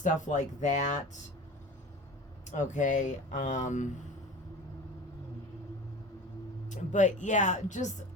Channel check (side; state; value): both; normal; correlation 0.36